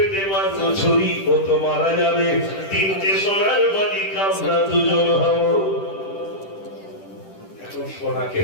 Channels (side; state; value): right; late; 10 ms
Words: মারবো ছুরি, ও তো মারা যাবে, তিনটে সোনার মালিক আমরা দুজন হব। এখন সোনাকে